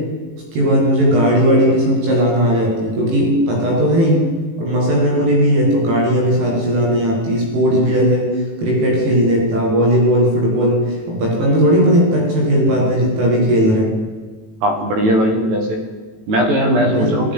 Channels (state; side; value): late; left; 18 ms